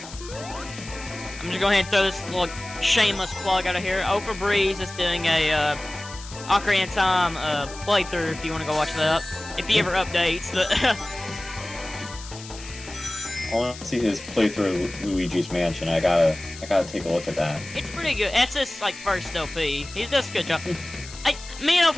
I'm just going ahead and throw this little shameless plug out of here. Oh for Breeze is doing a Ocarina of Time playthrough if you want to go watch that. If he ever updates, but I want to see his playthrough of Luigi's Mansion. I gotta take a look at that. it's pretty good. That's his like first LP. He does a good job. Me and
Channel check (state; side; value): noise; left; hiss, 15 dB below the sound